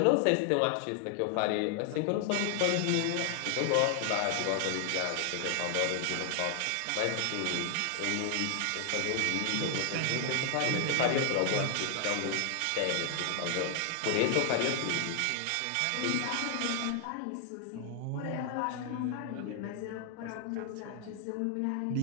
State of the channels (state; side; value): different; both; correlation 0.00